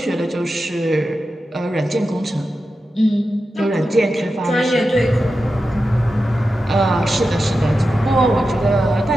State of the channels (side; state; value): both; normal; correlation 0.91